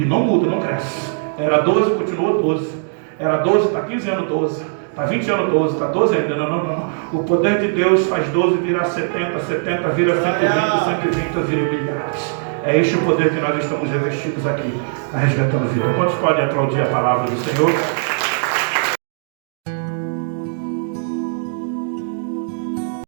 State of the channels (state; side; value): silent; left; digital silence